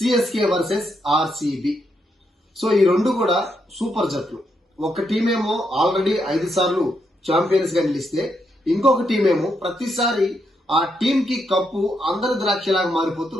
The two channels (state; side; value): normal; both; correlation 0.79